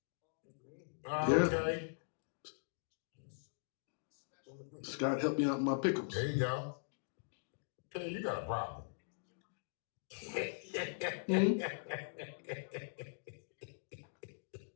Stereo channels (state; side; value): silent; right; digital silence